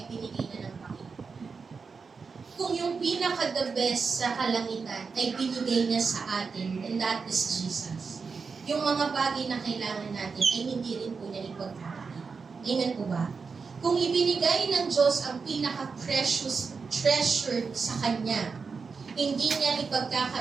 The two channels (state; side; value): quieter; left; 5.1 dB